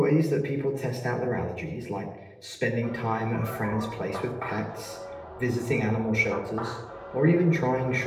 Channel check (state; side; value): identical; both; correlation 1.00